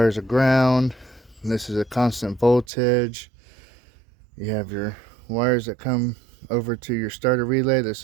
are ground. This is a constant voltage. You have your wires that come over to your starter relay. This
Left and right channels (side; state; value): left; drops out; at 2.7 s